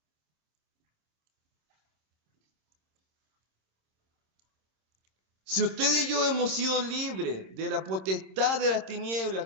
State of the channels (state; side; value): late; left; 26 ms